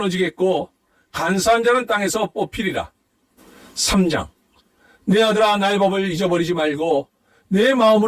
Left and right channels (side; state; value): both; identical; correlation 1.00